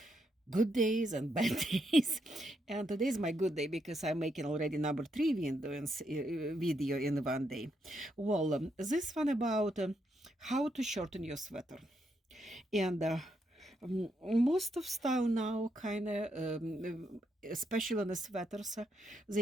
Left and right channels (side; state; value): both; normal; correlation 0.79